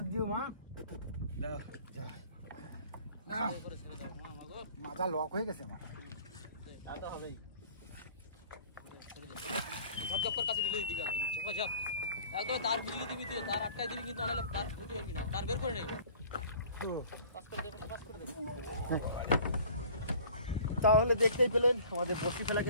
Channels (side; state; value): both; inverted; correlation -0.49